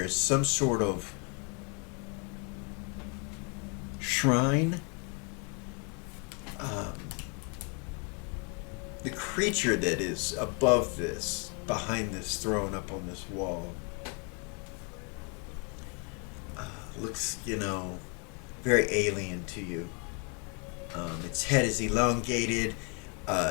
is some sort of shrine. The creature that is above this, behind this throne up on this wall, looks, very alien to you. Its head is elongated.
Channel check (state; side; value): quieter; right; 35.7 dB